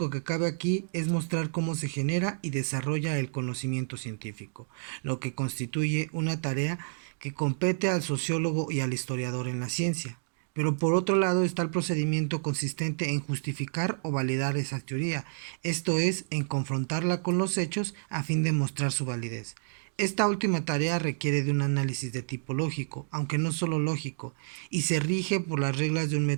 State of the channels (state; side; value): silent; left; digital silence